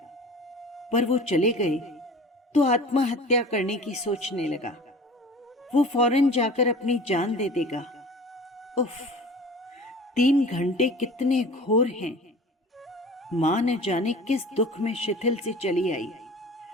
पर वो चले गए तो आत्महत्या करने की सोचने लगा। वो फौरन जाकर अपनी जान दे देगा। उफ, 3 घंटे कितने घोर हैं। मां न जाने किस दुख में शिथिल से चली आई।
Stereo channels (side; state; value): both; normal; correlation 0.41